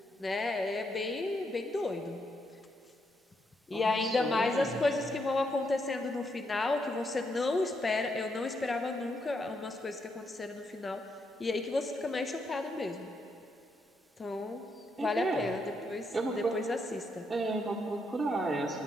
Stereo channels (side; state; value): both; normal; correlation 0.78